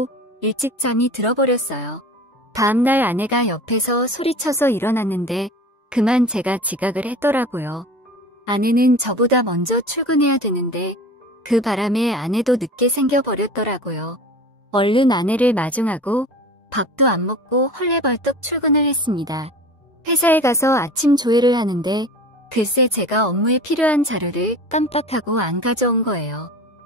일찍 잠이 들어버렸어요. 다음날 아내가 옆에서 소리쳐서 일어났는데 그만 제가 지각을 했더라고요. 아내는 저보다 먼저 출근해야 되는데 그 바람에 아내도 늦게 생겨버렸더라고요. 얼른 아내를 마중하고 밥도 안 먹고 헐레벌떡 출근을 했습니다. 회사에 가서 아침 조회를 하는데 글쎄 제가 업무에 필요한 자료를 깜빡하고 안 가져온 거예요.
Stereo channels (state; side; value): normal; both; correlation 0.37